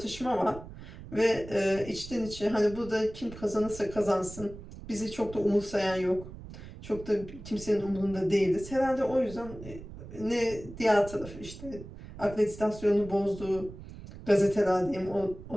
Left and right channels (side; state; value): right; noise; rumble, 14 dB below the sound